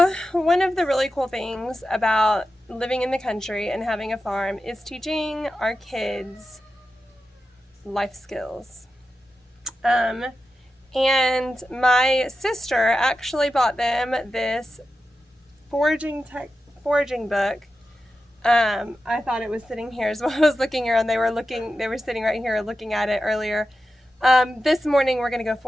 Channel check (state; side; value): normal; both; correlation 0.91